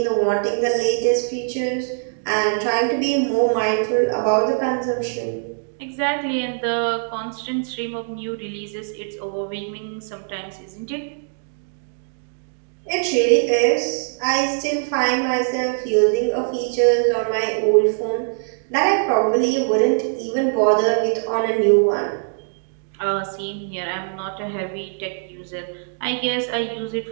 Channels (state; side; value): silent; left; digital silence